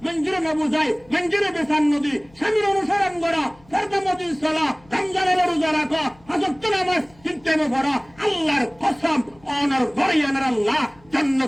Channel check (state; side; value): noise; left; hum, 28 dB below the sound